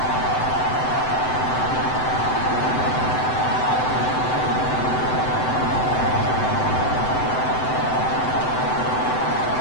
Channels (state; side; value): late; right; 7.9 ms